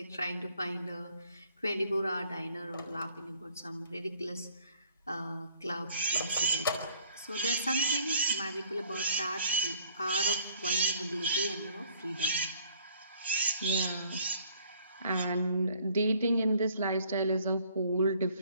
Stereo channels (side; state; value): both; inverted; correlation -0.59